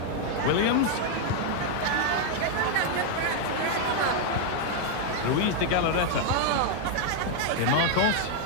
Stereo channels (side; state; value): both; different; correlation 0.00